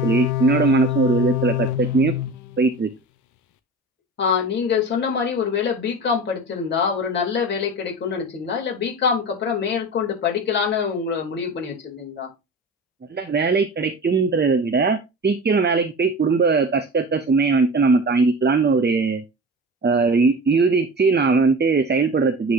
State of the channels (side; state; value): both; normal; correlation 0.33